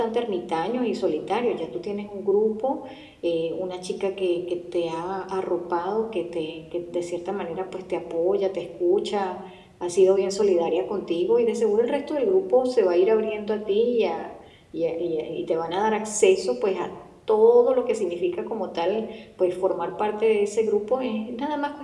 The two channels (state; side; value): identical; both; correlation 1.00